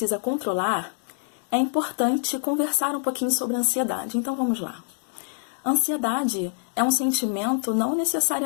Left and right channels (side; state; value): right; silent; 56 dB below the other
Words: controlar, é importante conversar um pouquinho sobre a ansiedade. Então vamos lá. Ansiedade é um sentimento não